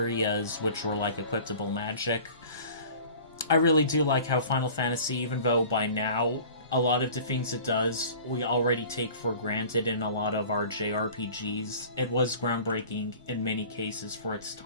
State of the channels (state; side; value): inverted; both; correlation -0.43